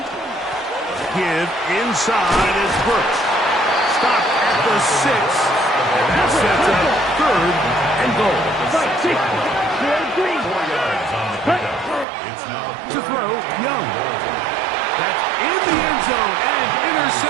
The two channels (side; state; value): left; drops out; at 12.1 s